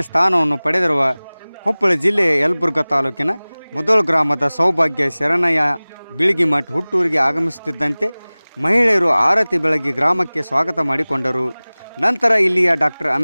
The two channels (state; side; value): inverted; both; correlation -1.00